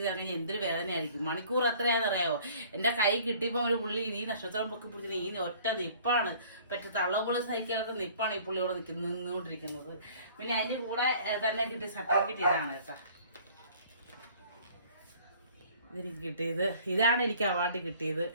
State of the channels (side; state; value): both; inverted; correlation -0.52